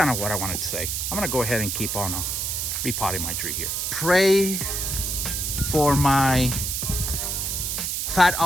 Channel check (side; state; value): right; noise; hiss, 1 dB below the sound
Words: of what I wanted to say. I'm gonna go ahead and keep on repotting my tree here. Pray for my Fat